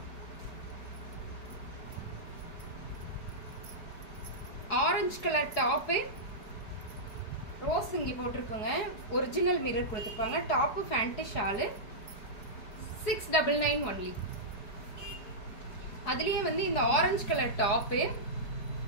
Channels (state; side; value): late; right; 4.7 ms